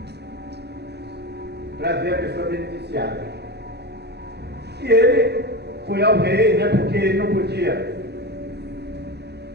para ver a pessoa beneficiada. E ele foi ao rei, né, porque ele não podia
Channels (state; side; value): late; left; 0.48 ms